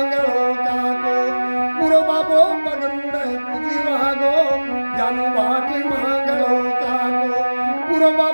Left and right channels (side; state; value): both; inverted; correlation -1.00